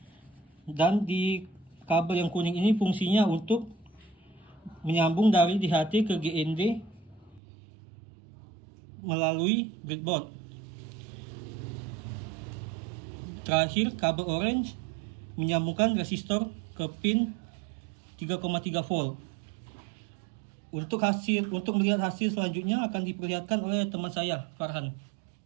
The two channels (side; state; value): left; drops out; at 7.4 s